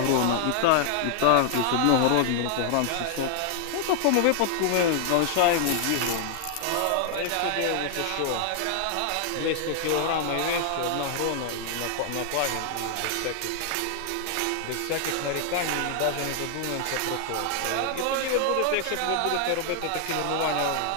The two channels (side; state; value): both; different; correlation 0.00